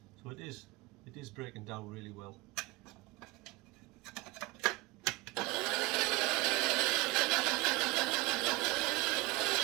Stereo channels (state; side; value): quieter; left; 22.1 dB